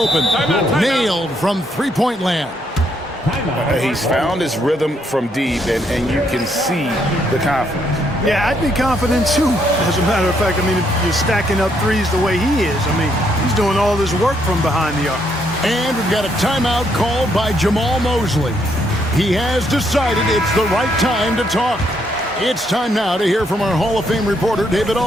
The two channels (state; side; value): normal; both; correlation 0.73